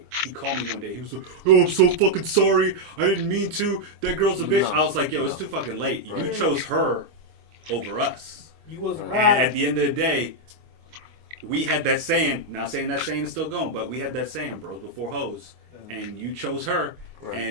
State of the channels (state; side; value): late; left; 25 ms